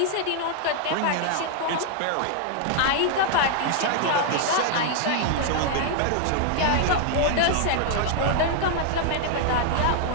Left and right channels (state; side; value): different; both; correlation 0.00